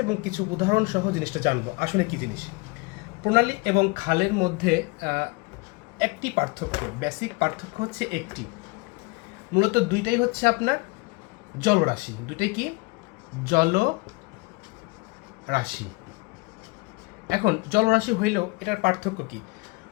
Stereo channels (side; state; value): right; quieter; 26.0 dB